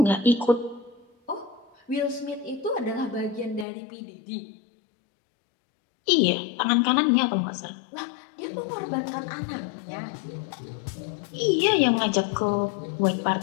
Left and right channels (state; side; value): drops out; right; at 3.7 s